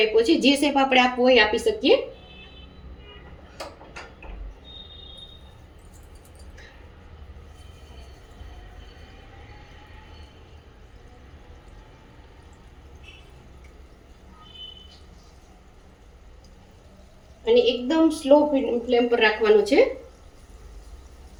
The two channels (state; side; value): identical; both; correlation 1.00